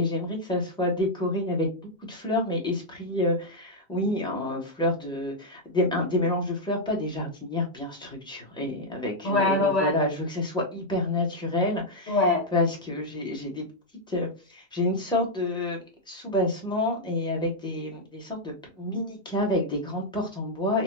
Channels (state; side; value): normal; both; correlation -0.03